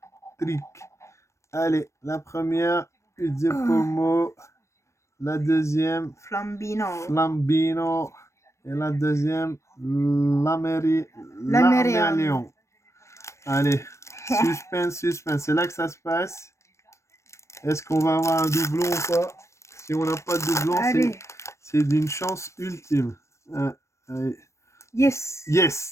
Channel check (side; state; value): right; late; 0.14 ms